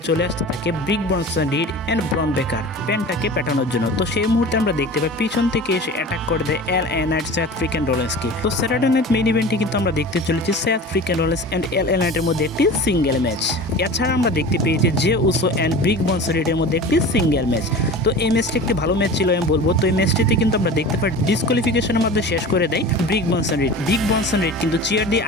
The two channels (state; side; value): normal; both; correlation 0.36